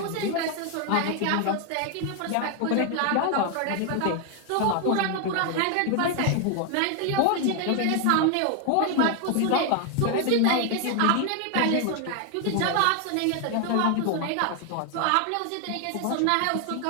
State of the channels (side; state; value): both; different; correlation 0.00